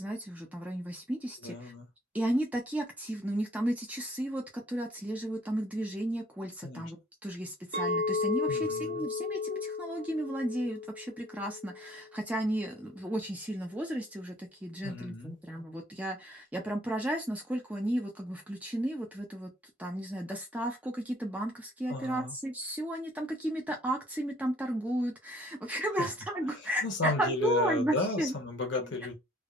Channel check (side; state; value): both; normal; correlation 0.60